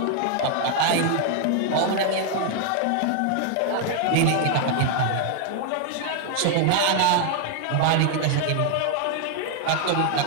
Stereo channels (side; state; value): both; different; correlation 0.00